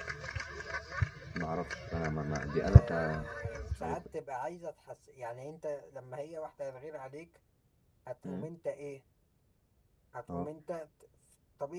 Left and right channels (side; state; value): both; identical; correlation 1.00